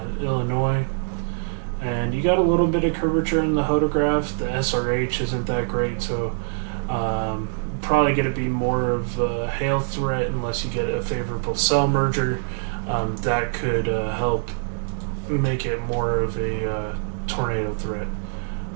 Illinois. And you got a little bit of curvature in the hodograph. The SRH isn't that great, so probably going to be more of a hail threat unless you get a favorable cell merger. That could help make it more of a tornado threat.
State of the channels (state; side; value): silent; left; digital silence